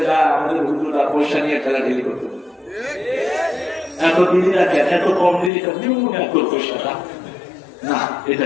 যায়, আমাদের হুজুরা পয়সা নিয়ে ঠেলাঠেলি করতে, এত দিলি না কেন, এত কম দিলি কেন, এত পয়সাটা না, এটা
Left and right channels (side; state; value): right; drops out; at 5.5 s